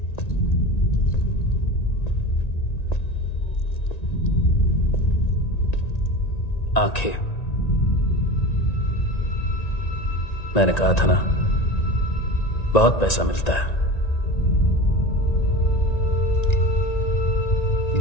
आंखें, मैंने कहा था ना, बहुत पैसा मिलता है।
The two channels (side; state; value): right; late; 1.9 ms